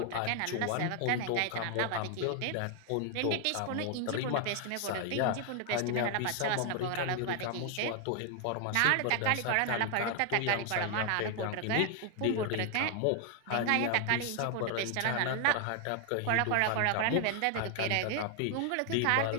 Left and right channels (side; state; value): both; different; correlation 0.00